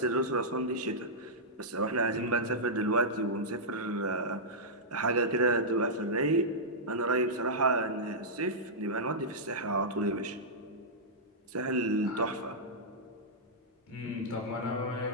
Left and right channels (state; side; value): normal; both; correlation -0.12